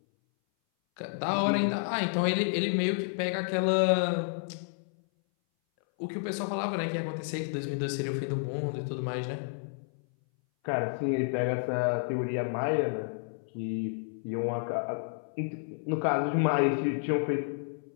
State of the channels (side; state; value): right; silent; 57 dB below the other